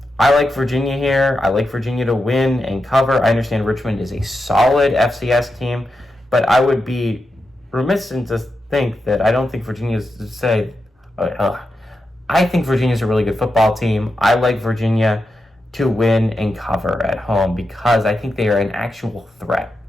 I like Virginia here. I like Virginia to win and cover. I understand Richmond is a solid FCS team, but I would be remiss to think that I don't think Virginia's to say, I think Virginia's a really good football team. I like Virginia to win and cover at home because I think they are an actual threat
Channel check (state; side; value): normal; both; correlation 0.88